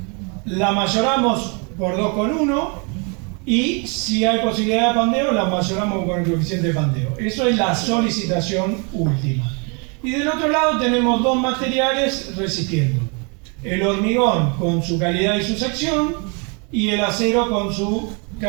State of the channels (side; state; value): left; quieter; 34.4 dB